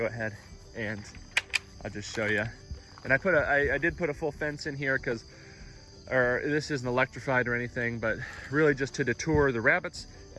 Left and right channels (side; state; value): both; identical; correlation 1.00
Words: ahead and I'll just show you. And I did put a full fence in here because, or this isn't electrified or anything, but really just to deter the rabbits,